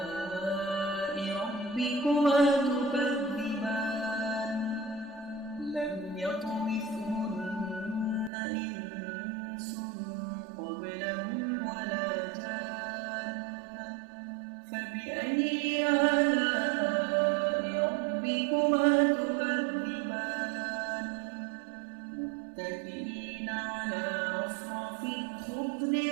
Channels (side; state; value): left; drops out; at 8.3 s